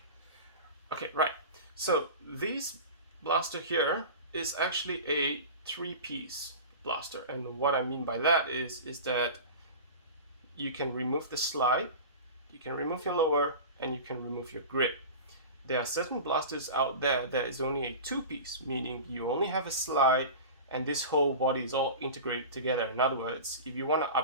Okay, right. So this blaster here is actually a 3-piece blaster. And what I mean by that is that you can remove the slide, you can remove your lower, and you can remove your grip. There are certain blasters out there that is only a 2-piece, meaning you only have a slide and this whole body is all integrated together. In other words, if you want to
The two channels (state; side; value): inverted; both; correlation -0.32